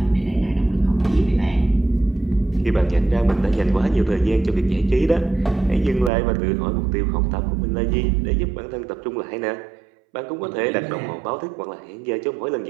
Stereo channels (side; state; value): left; drops out; at 6.1 s